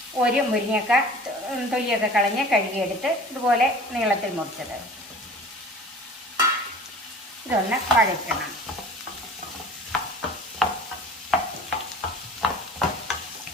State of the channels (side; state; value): both; normal; correlation 0.43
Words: ഒരു മുരിങ്ങക്ക തൊലിയൊക്കെ കളഞ്ഞ് കഴുകിയെടുത്ത് ഇതുപോലെ നീളത്തിൽ മുറിച്ചത്, ഇതൊന്ന് വഴറ്റണം.